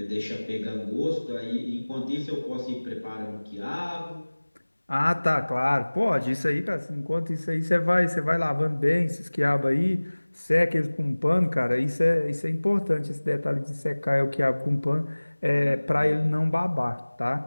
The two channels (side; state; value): both; inverted; correlation -1.00